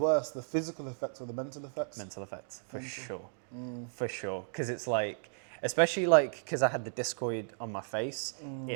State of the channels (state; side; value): silent; left; digital silence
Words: the physical effects or the mental effects? Mental effects, for sure. For sure. Because it's like, especially like, because I had the discoid on my face,